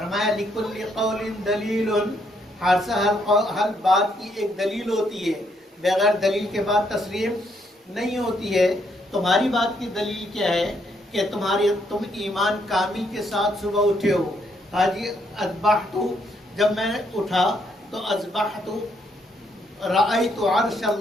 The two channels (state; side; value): normal; both; correlation 0.73